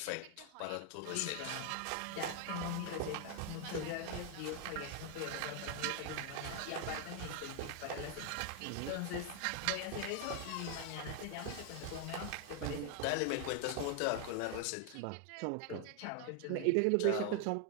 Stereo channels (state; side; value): different; both; correlation 0.01